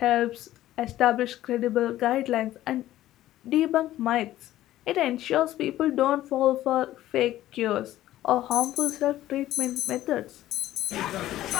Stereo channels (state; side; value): quieter; right; 14.2 dB